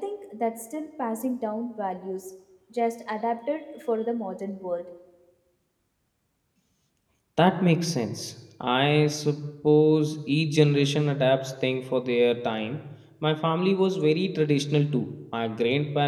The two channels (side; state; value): both; identical; correlation 1.00